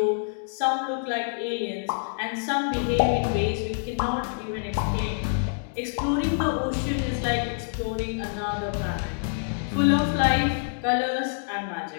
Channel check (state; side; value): silent; right; digital silence